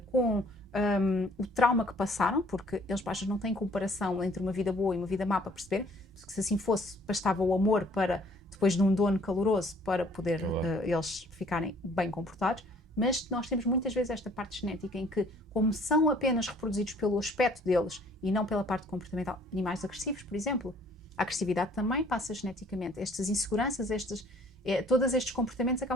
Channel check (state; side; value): normal; both; correlation 0.58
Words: com o trauma que passaram, porque eles às vezes não têm comparação entre uma vida boa e uma vida má para perceber, porque se assim fosse, bastava o amor para, depois de um dono caloroso, para poder eles ficarem bem comportados. Mas nós temos muitas vezes esta parte genética em que, como são apenas reproduzidos pelo aspecto deles e não pela parte comportamental, animais agressivos, por exemplo, a agressividade também passa geneticamente. Estas inseguranças, todos estes comportamentos